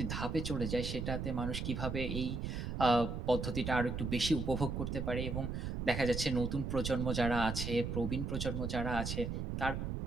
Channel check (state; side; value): noise; right; rumble, 3 dB below the sound